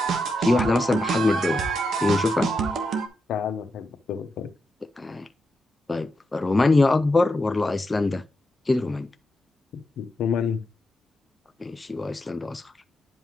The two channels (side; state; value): both; normal; correlation 0.86